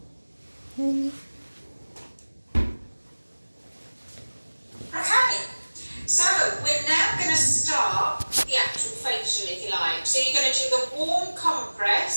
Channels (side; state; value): both; inverted; correlation -1.00